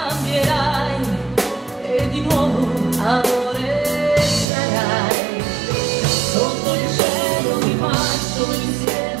e di nuovo amore sarai. Sotto il cielo di maggio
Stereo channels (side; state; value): left; drops out; at 4.5 s